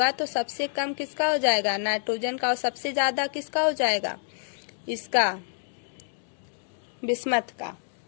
तो सबसे कम किसका हो जाएगा, नाइट्रोजन का, और सबसे ज्यादा किसका हो जाएगा, इसका, बिस्मथ का।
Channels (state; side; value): silent; right; digital silence